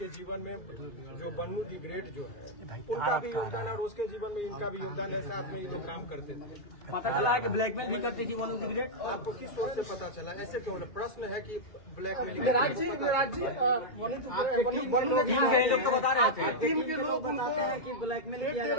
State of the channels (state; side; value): late; right; 2.4 ms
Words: जीवन में जो वनु द ग्रेट जो है उनका भी योगदान है और उसके जीवन में इनका भी योगदान है। साथ में ये लोग काम करते थे। पता चला है कि ब्लैकमेल भी करती थी वनु द ग्रेट। आपको किस सोच से पता चला? ऐसे क्यों? प्रश्न है कि ब्लैकमेलिंग के लोग तो बता रहे थे, टीम के लोग बताते हैं कि ब्लैकमेल किया